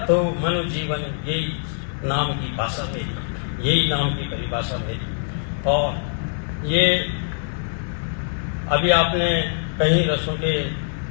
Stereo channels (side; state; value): right; silent; 63 dB below the other